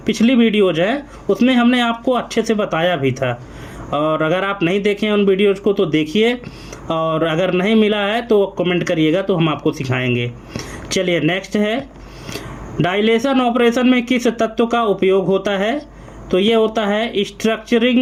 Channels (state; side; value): identical; both; correlation 1.00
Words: पिछली वीडियोज है उसमें हमने आपको अच्छे से बताया भी था, और अगर आप नहीं देखें उन वीडियोज़ को तो देखिए, और अगर नहीं मिला है तो कमेंट करिएगा, तो हम आपको सिखाएंगे। चलिए नेक्स्ट है, डायलेशन ऑपरेशन में किस तत्व का उपयोग होता है? तो ये होता है